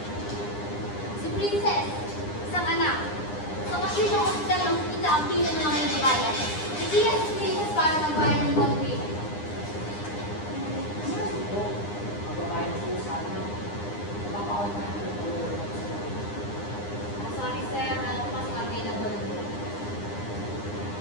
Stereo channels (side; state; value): right; late; 9.8 ms